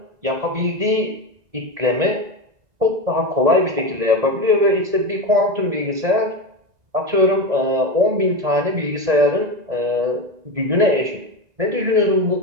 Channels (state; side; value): late; left; 1.9 ms